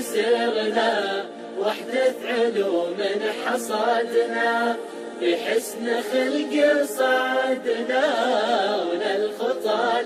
سرنا وحدة علوم حصادنا، بحسن خلق صعدنا وللخطى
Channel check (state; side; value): identical; both; correlation 1.00